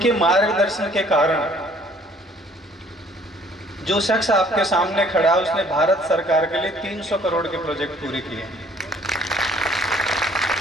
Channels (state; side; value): normal; both; correlation 0.58